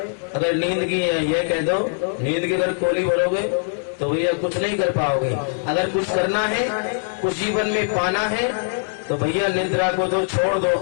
अगर नींद की यह कह दो, नींद की अगर कोली भरोगे तो भैया कुछ नहीं कर पाओगे। अगर कुछ करना है, कुछ जीवन में पाना है, तो भैया निद्रा को तो छोड़ दो,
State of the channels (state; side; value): silent; right; digital silence